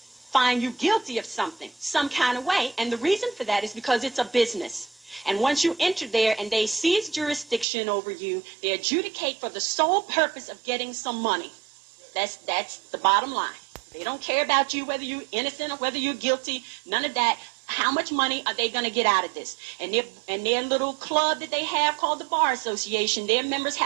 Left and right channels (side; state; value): left; drops out; at 7.7 s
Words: find you guilty of something, some kind of way. And the reason for that is because it's a business. And once you enter there and they seize jurisdiction over you, they adjudicate for the sole purpose of getting some money. That's the bottom line. They don't care about you, whether you're innocent or whether you're guilty, none of that. How much money are they going to get out of this? And their little club that they have called the Bar Association, their members